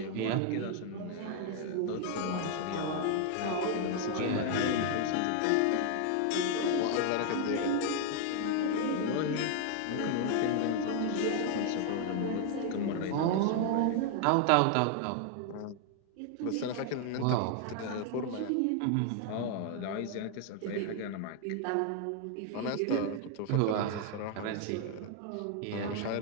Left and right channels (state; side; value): different; both; correlation 0.00